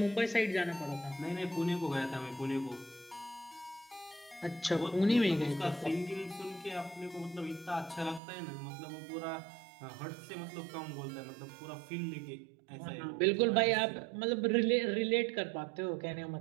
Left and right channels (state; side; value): drops out; left; at 8.2 s